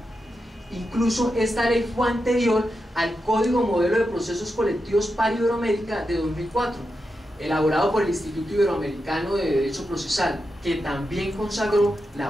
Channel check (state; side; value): normal; both; correlation 0.88